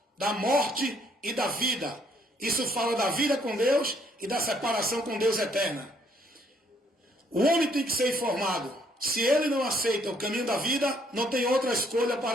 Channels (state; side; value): normal; both; correlation 0.67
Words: da morte e da vida. Isso fala da vida com Deus e da separação com Deus eterna. O homem tem que ser informado. Se ele não aceita o caminho da vida, não tem outra escolha